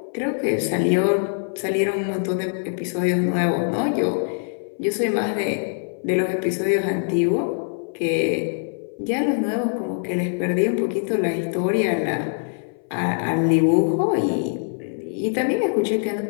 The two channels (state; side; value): silent; right; 59 dB below the other